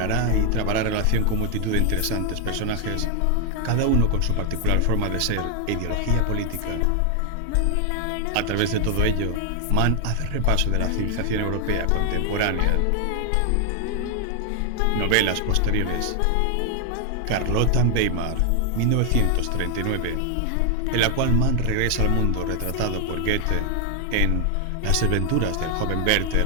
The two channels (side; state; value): both; different; correlation 0.00